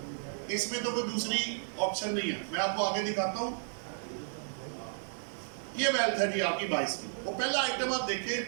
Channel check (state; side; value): silent; left; 56 dB below the other